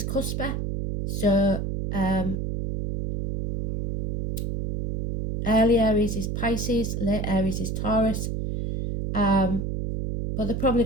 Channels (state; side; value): noise; right; hum, 2 dB below the sound